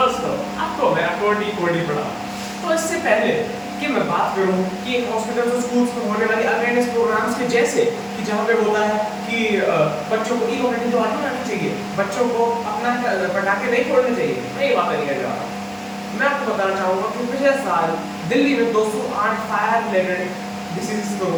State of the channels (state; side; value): identical; both; correlation 1.00